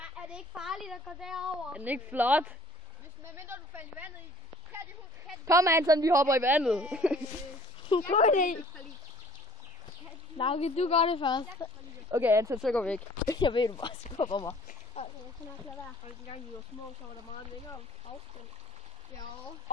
det ikke farligt at gå derover? Er den ikke flot? Medmindre du falder i vandet i. Kom Anton, vi hopper i vandet. God idé. Lauke, du gør det først. Okay Anton, så går vi væk. Jeg ved, du bare skubber mig. Dengang vi var små, så var der meget længere afstand. Ja.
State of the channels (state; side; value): normal; both; correlation 0.54